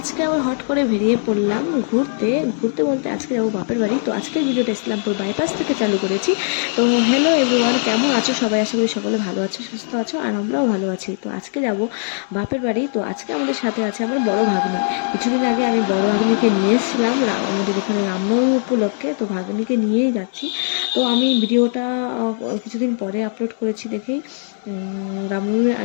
আবার হট করে বেরিয়ে পড়লাম ঘুরতে ঘুরতে বলতে আজকে যাবো বাপের বাড়ি। তো আজকের ভিডিওটা ইসলামপুর বাইপাস থেকে চালু করেছি। তো হ্যালো এভরিওয়ান, কেমন আছো সবাই? আশা করি সকলে ভালো আছো, সুস্থ আছো, আর আমরাও ভালো আছি। তো আজকে যাব বাপের বাড়ি। তো আজকে আমাদের সাথে আছে আমার বড় ভাগ্নি। কিছুদিন আগে আমি বড় ভাগ্নিকে নিয়ে এসেছিলাম আমাদের এখানে রামনবমী উপলক্ষে। তো ভাগ্নিকে নিয়েই যাচ্ছি। তো আমি ভিডিওটা কিছুদিন পরে আপলোড করেছি দেখেই, রামনবমীর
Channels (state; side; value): silent; right; 64 dB below the other